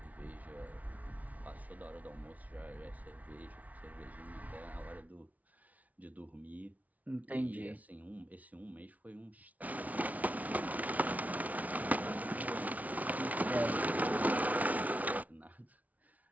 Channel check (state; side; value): late; left; 0.072 ms